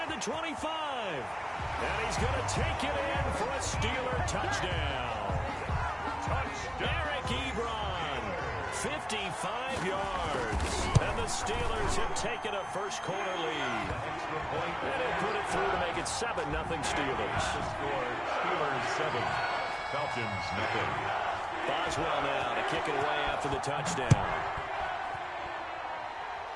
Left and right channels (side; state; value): both; identical; correlation 1.00